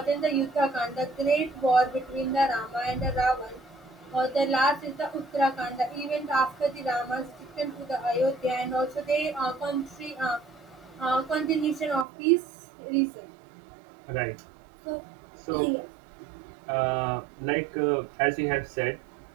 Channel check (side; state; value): left; drops out; at 12.1 s